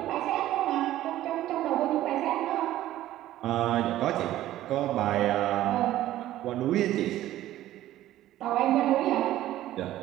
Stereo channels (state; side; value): quieter; left; 14.0 dB